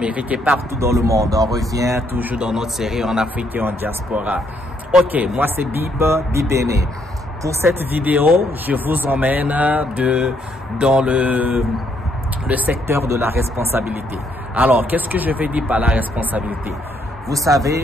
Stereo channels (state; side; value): normal; both; correlation 0.71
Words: et partout dans le monde. On revient toujours dans notre série en Afrique et en diaspora. Ok, moi c'est Bibene. Pour cette vidéo, je vous emmène dans le secteur de la responsabilité. Alors, qu'est-ce que je vais dire par la responsabilité? Vous